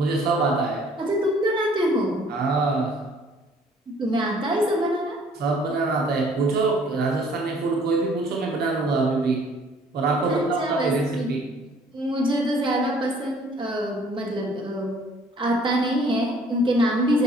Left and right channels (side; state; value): both; normal; correlation 0.57